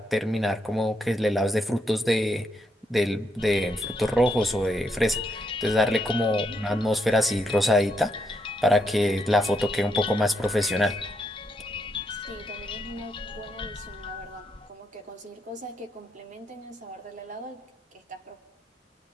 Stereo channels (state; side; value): normal; both; correlation 0.78